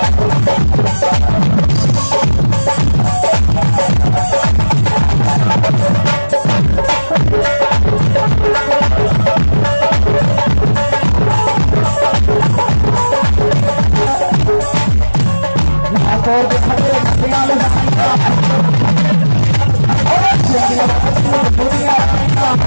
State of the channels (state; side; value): inverted; both; correlation -1.00